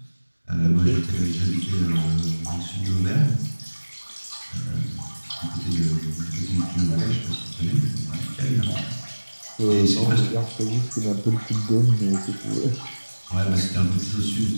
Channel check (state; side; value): inverted; both; correlation -1.00